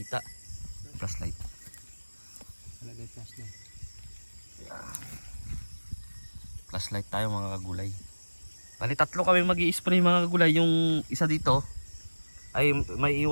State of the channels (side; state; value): both; inverted; correlation -1.00